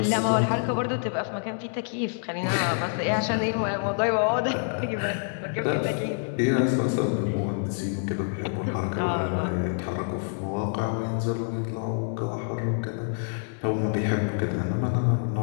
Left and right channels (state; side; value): silent; right; digital silence